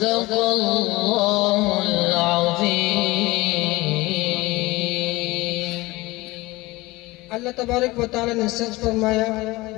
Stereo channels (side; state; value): right; quieter; 20.8 dB